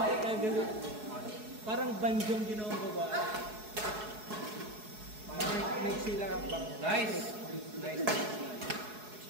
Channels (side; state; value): left; late; 4.7 ms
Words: ay kagano. Parang banjong ginawang babae. May sila kang bang. Nice. Nice.